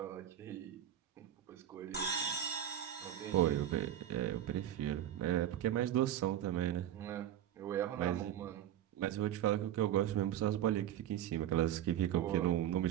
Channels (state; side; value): quieter; left; 11.2 dB